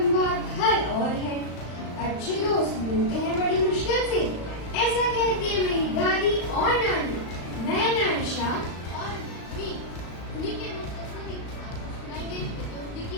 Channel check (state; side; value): late; right; 36 ms